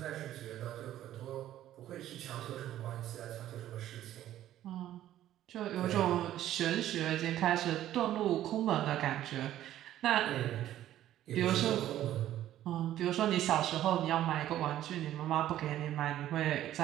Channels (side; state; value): left; quieter; 12.7 dB